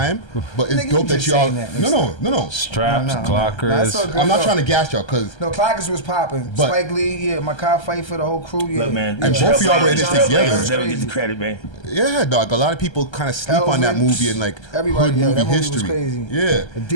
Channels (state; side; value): late; right; 1.3 ms